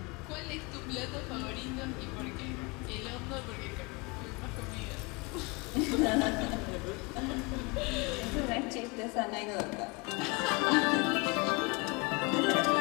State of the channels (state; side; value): quieter; right; 27.8 dB